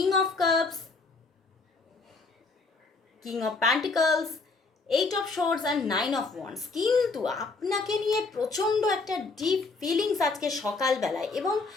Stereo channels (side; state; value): right; quieter; 3.9 dB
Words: of cups, king of pentacles, 8 of swords and 9 of wands, কিন্তু আপনাকে নিয়ে প্রচণ্ড একটা ডিপ ফিলিংস আজকে সকালবেলায়, এবং